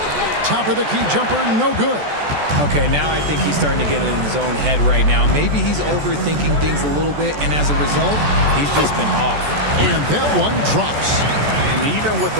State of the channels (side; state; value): left; late; 14 ms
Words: Top of the key jumper, no good. Okay, now I think he's starting to get in his own head right now. Maybe he's overthinking things a little bit, and as a result, he's just been off. And that one drops. And even with